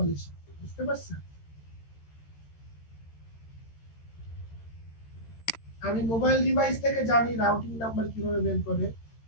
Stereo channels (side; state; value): right; late; 13 ms